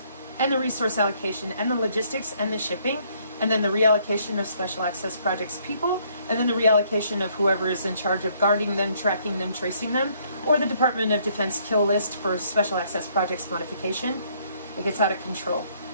And the resource allocation, and the logistics, and the shipping, and then the reallocation of special access projects people, and then the reallocation of whoever is in charge of guarding them, tracking them, tracing them, or the Department of Defense kill list for special access projects modification. It gets out of control.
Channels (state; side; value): inverted; both; correlation -0.66